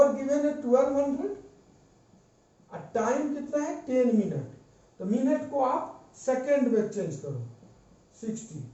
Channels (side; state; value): both; identical; correlation 1.00